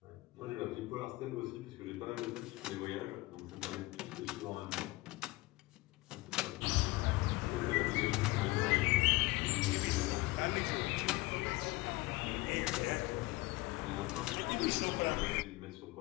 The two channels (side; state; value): right; quieter; 21.5 dB